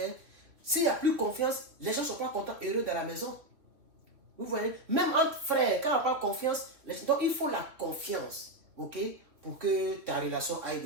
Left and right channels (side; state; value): left; late; 3.1 ms